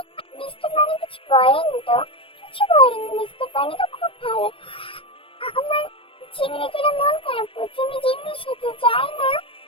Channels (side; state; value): right; late; 0.26 ms